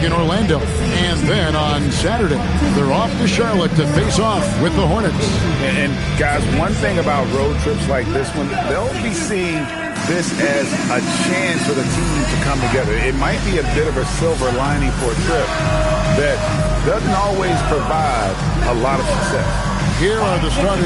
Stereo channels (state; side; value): identical; both; correlation 1.00